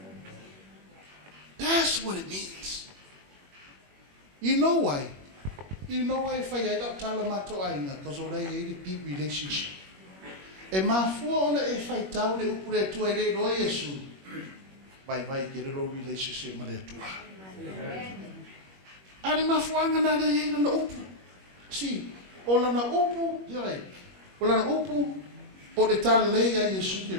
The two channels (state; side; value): late; left; 21 ms